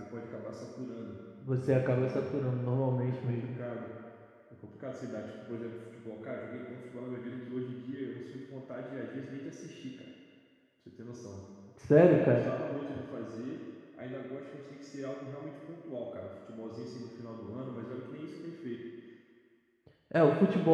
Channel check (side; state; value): both; identical; correlation 1.00